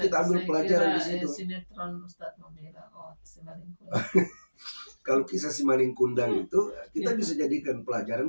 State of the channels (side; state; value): both; inverted; correlation -1.00